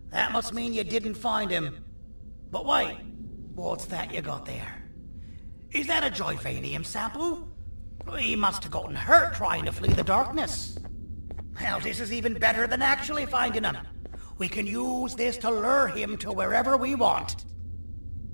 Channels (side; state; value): both; inverted; correlation -1.00